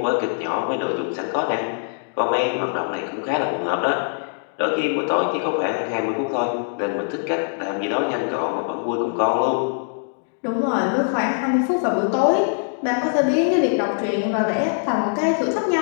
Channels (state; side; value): silent; right; digital silence